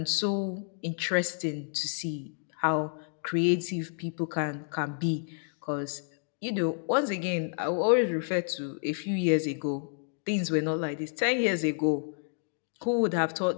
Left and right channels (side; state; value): right; silent; digital silence